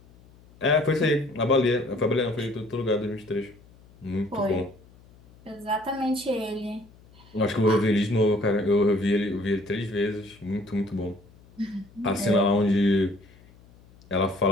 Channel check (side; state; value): left; noise; hum, 26 dB below the sound